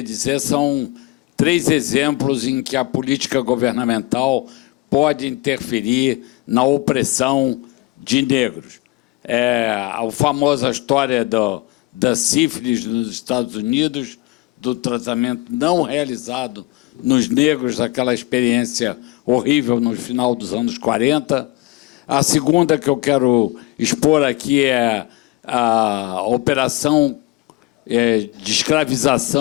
dizer são 3 exemplos em que a política governamental pode interferir na opressão de negros. A famosa história da sífilis nos Estados Unidos, do tratamento não realizado nos negros, aquela experiência horrível no final dos anos 40. A segunda que eu quero expor aqui é a operação de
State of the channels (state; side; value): quieter; right; 20.4 dB